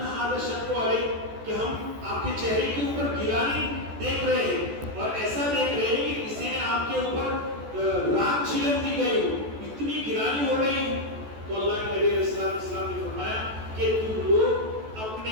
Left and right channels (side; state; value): left; late; 14 ms